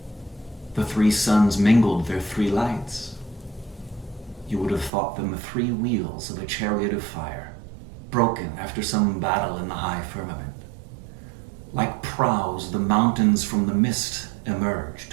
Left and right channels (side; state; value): left; drops out; at 4.9 s